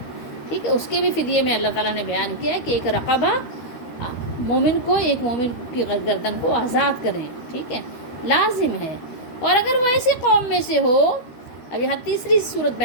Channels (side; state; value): right; late; 13 ms